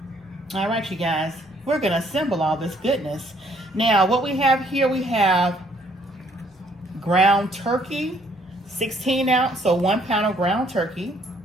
All right, you guys, we're going to assemble all this goodness. Now, what we have here, we have ground turkey, 16 ounce, so 1 pound of ground turkey.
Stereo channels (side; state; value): both; normal; correlation 0.65